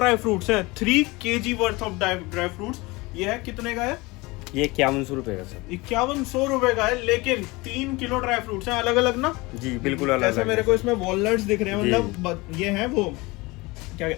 फ्रूट्स है, 3 kg worth of dry fruits. ये है कितने का है? ये 5100 रुपये का सर। 5100 रुपए का है, लेकिन 3 किलो ड्राई फ्रूट्स हैं, अलग अलग ना? जी बिल्कुल अलग। जैसे मेरे को इसमें वॉलनट्स दिख रहे हैं, मतलब ये है वो क्या,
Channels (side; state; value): right; quieter; 23.3 dB